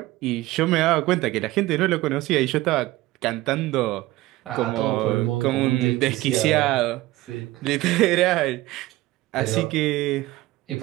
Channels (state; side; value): quieter; left; 17.8 dB